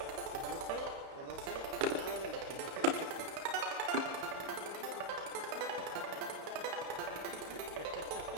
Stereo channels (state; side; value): late; left; 32 ms